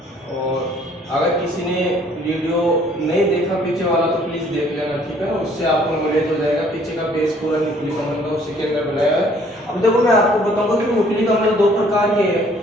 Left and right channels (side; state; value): both; normal; correlation 0.59